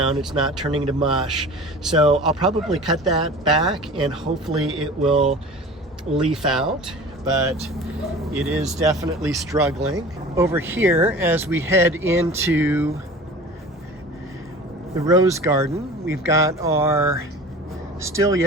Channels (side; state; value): both; normal; correlation 0.39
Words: it's not turning to mush. So I'll probably cut that back and hopefully it will leaf out, but it is definitely struggling. Over here, as we head into the rose garden, we've got our still